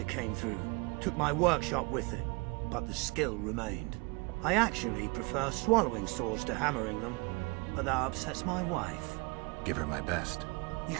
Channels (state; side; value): quieter; left; 28.6 dB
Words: came through, took my workshop with it, but the skill remained. I actually prefer swallowing swords to hammering them, but that upsets my wife. Give her my best. You